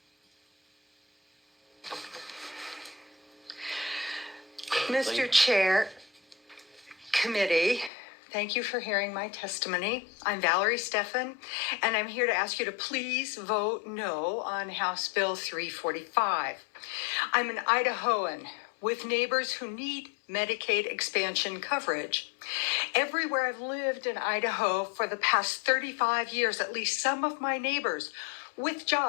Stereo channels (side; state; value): right; drops out; at 7.9 s